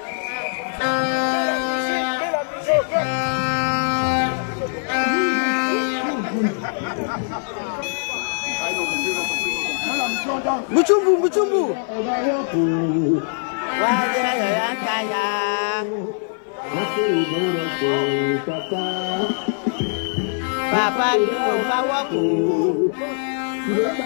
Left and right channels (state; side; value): silent; right; 55 dB below the other